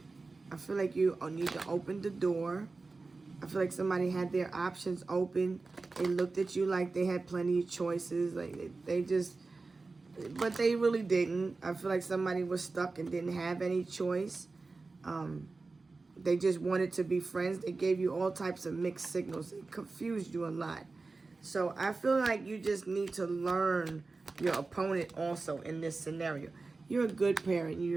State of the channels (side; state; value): left; quieter; 3.8 dB